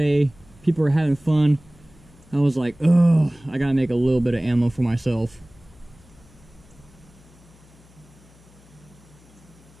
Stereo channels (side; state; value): left; noise; hum, 26 dB below the sound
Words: people are having fun. I was like, oh, I gotta make a little bit of ammo for myself.